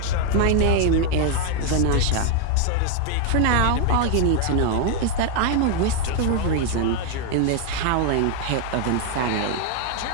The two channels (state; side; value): different; both; correlation 0.01